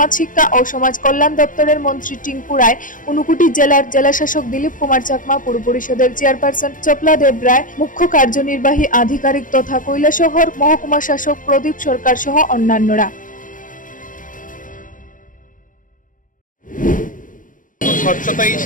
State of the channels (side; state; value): right; late; 0.38 ms